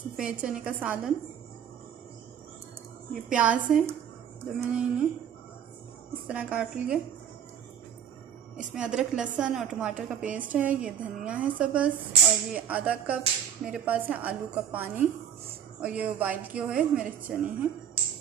चने का सालन। ये प्याज है जो मैंने इन्हें इस तरह काट लिए। इसमें अदरक, लहसुन और टमाटर का पेस्ट है। ये धनिया है सब्ज़, और ये आधा कप मेरे पास है आलू का पानी, और ये बॉइल किए हुए मेरे चने हैं।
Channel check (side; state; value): left; quieter; 8.7 dB